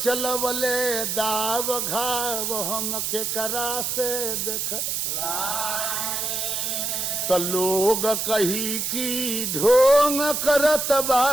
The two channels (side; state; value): right; noise; hiss, 1 dB below the sound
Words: दाव घाव हम के करा से देख तो लोग कही की ढोंग करत बा